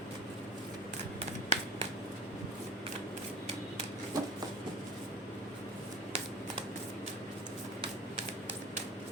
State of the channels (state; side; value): normal; both; correlation 0.37